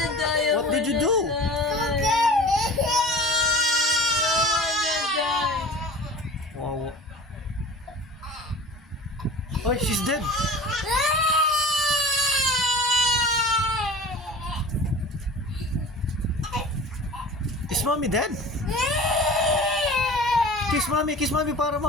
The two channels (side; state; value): both; normal; correlation 0.40